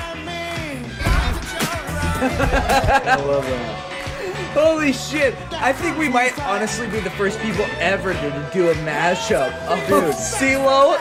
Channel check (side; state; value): both; identical; correlation 1.00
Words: I love that. Holy shit! I think we might honestly be the first people ever to do a mashup of CeeLo